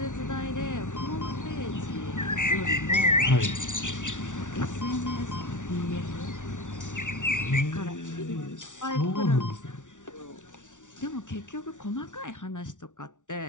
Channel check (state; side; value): late; right; 0.87 ms